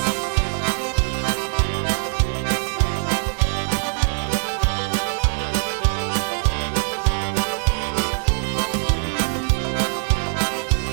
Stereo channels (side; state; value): left; silent; digital silence